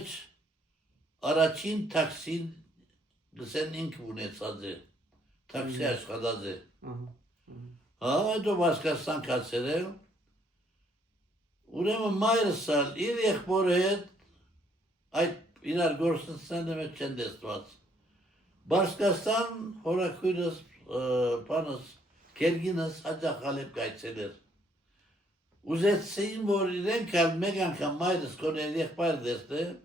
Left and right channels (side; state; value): both; normal; correlation 0.67